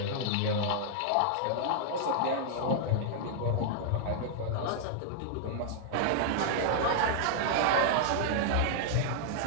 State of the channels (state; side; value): different; both; correlation -0.01